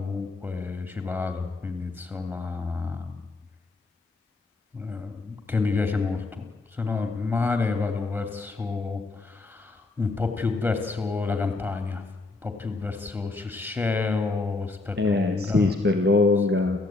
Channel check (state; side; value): quieter; right; 3.4 dB